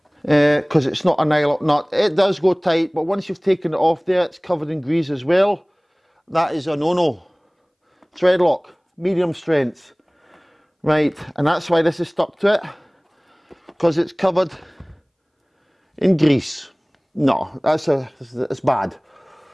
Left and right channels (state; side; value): identical; both; correlation 1.00